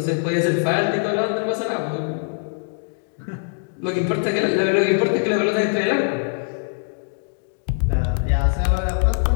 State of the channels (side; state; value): right; silent; digital silence